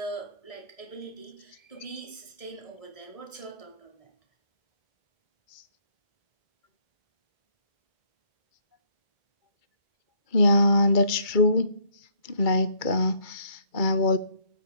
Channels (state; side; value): late; right; 1.6 ms